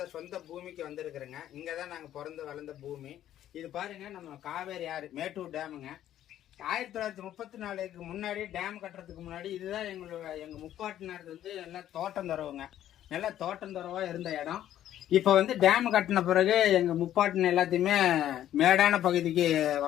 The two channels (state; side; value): quieter; right; 11.8 dB